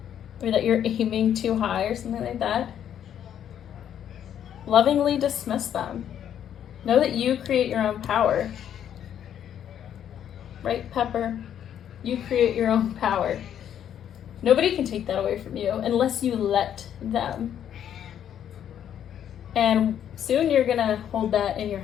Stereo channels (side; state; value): right; quieter; 9.7 dB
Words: or that you're aiming too high or something like that, lovingly dismiss them. Know that you create your own power. Right, Pepper? You create your own power. Nobody can take that away from you unless you let them. And soon you're going to hold that in your